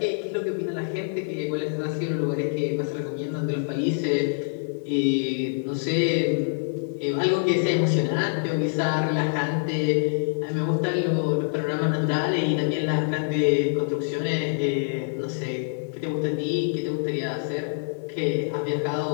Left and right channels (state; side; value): silent; right; 61 dB below the other